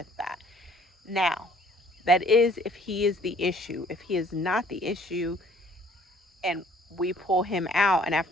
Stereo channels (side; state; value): both; normal; correlation 0.58